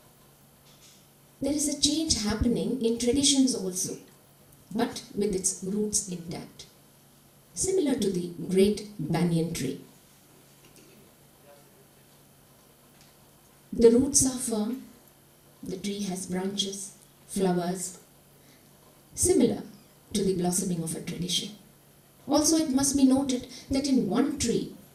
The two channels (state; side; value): identical; both; correlation 1.00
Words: There is a change happening in traditions also, but with its roots intact. Similar to the great banyan tree. The roots are firm, the tree has branches, flowers, similar to the blossoming of a tradition. Also, it must be noted that in one tree,